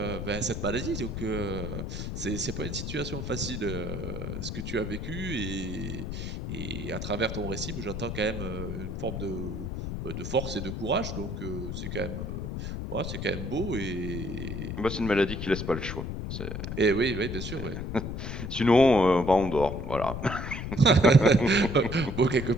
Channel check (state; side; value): noise; left; rumble, 5 dB below the sound